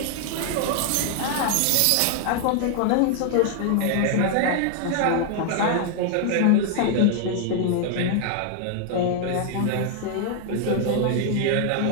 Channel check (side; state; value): both; different; correlation 0.00